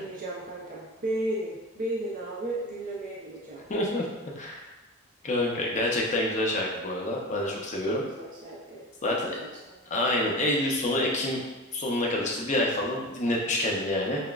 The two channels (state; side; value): normal; both; correlation 0.30